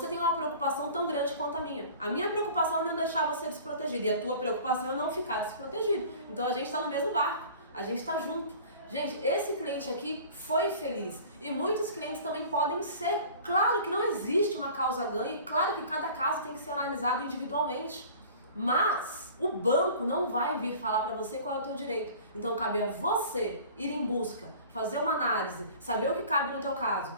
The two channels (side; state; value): both; inverted; correlation -0.44